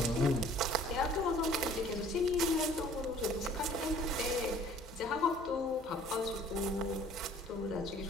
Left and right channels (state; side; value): normal; both; correlation 0.53